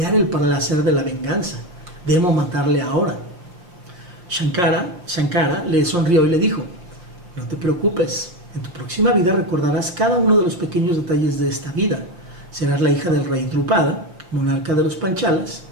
el placer de la venganza. Debo matarle ahora. Shankara le sonrió y le dijo, no te preocupes, en tu próxima vida recordarás cada uno de los pequeños detalles de esta vida. Serás la hija del rey Drupada, monarca de los Panchalas,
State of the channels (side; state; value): left; late; 5.7 ms